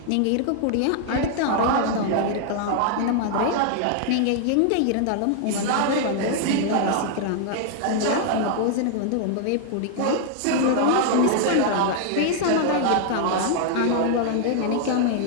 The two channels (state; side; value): different; both; correlation 0.00